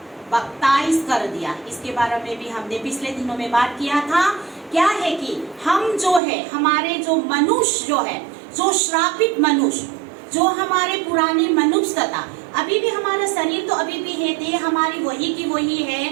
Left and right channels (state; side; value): drops out; left; at 6.2 s